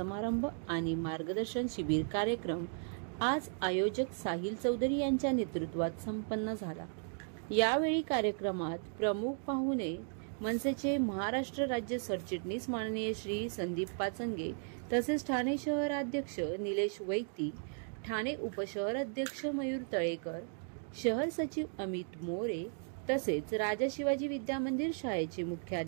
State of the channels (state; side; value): silent; left; 54 dB below the other